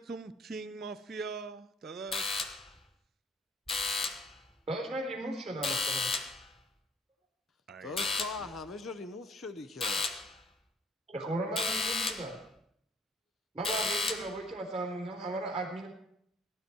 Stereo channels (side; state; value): both; normal; correlation 0.57